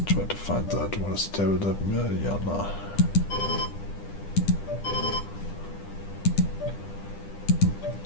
try to find that. What is table that Mariana?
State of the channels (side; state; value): right; late; 10 ms